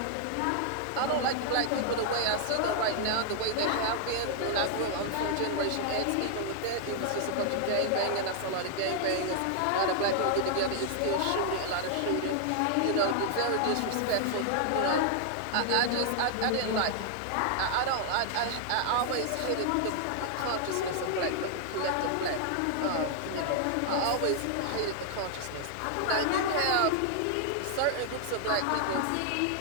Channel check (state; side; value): different; both; correlation 0.00